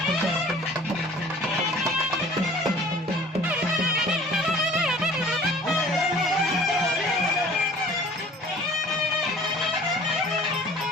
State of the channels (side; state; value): both; normal; correlation 0.49